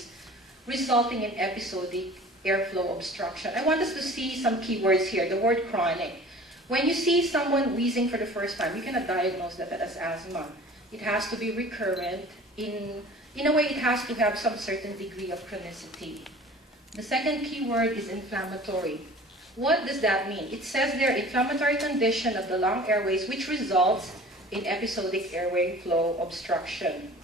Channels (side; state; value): both; normal; correlation 0.44